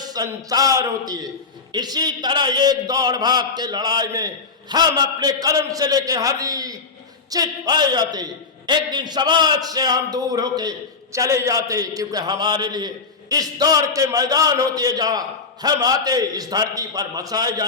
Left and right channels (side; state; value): right; quieter; 4.6 dB